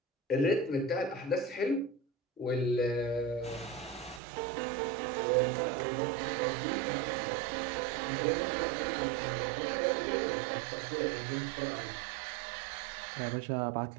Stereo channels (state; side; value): drops out; left; at 4.2 s